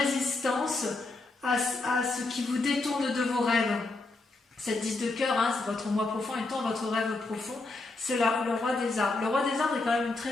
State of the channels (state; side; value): quieter; right; 3.3 dB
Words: à ce qui vous détourne de vos rêves. Cette 10 de cœur, c'est votre moi profond étant votre rêve profond, c'est le roi des arbres. Le roi des arbres est quand même une